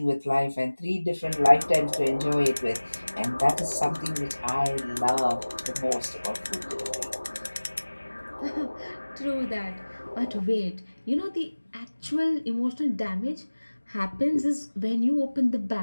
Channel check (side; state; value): both; inverted; correlation -1.00